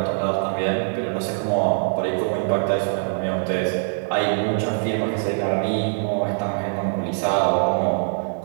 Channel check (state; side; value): silent; left; digital silence